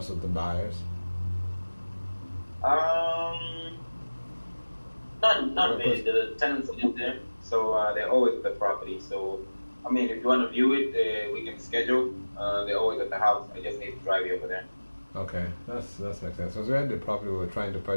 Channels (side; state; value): both; inverted; correlation -1.00